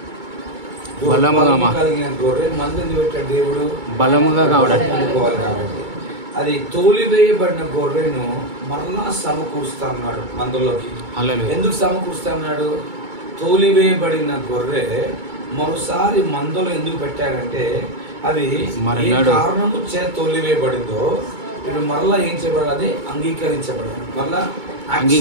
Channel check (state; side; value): late; left; 2.2 ms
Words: కలిగిన గొర్రె మందు ఎందుకు పెట్టాడు దేవుడు? బలముగా కావడానికి. కాబట్టి అది తోలివేయబడిన గొర్రెను మరలా సమకూరుస్తా ఉన్నాడు మందులోకి. ఎందుకు సమకూరుస్తా ఉన్నాడు? తోలివేయబడిన గొర్రె మరోసారి మందులో ఎందుకు పెట్టాడంటే అది ఏ కారణము చే తోలివేయబడిందో ఇప్పుడు మరలా ఏం చేయబడాలి, అది అంగీకరించబడాలి, మరలా